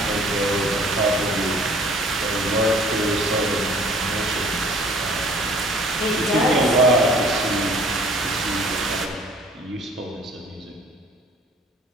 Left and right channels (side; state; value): both; normal; correlation 0.52